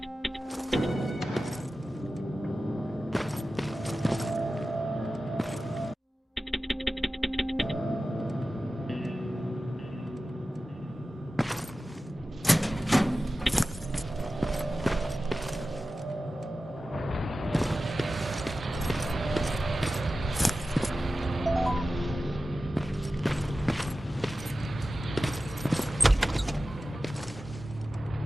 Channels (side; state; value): both; normal; correlation 0.94